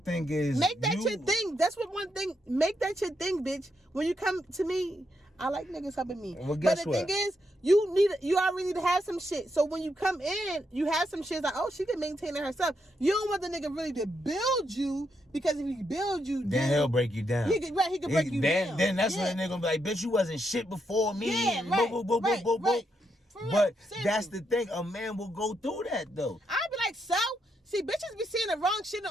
is, make that your thing. That's what one thing. Make that your thing, bitch. When you come to me, I like niggas helping me. Well, guess but the thing is, you already need to have some shit. So when you come in, you have some shit like, oh, she can maintain it herself. You don't want the nigga really to build you, because if he build you, then he'll break you down. He could break you down. Then that's when the nigga gonna be like, bitch, you wasn't shit before me. Yeah, right. Right. But that's the thing. A man will go through that though. I'll be like, so? See, bitches be saying the wrong shit in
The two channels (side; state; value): both; normal; correlation 0.80